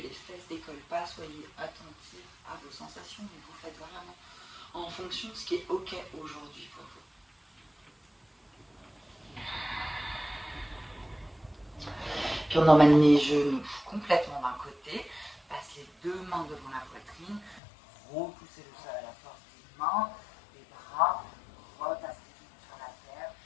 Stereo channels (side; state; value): right; drops out; at 17.6 s